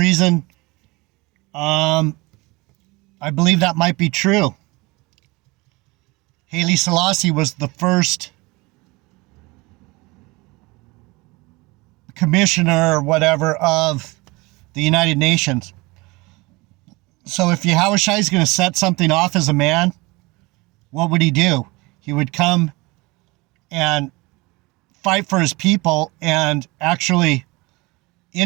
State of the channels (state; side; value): quieter; left; 23.9 dB